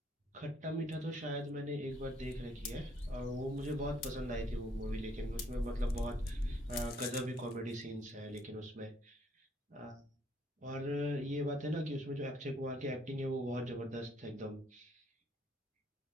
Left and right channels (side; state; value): both; normal; correlation 0.67